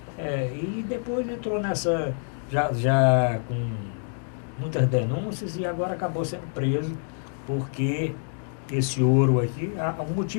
E depois entrou nessa, já com muitas denúncias, e agora acabou sendo preso, porque esse ouro aqui, o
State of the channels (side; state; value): right; silent; 61 dB below the other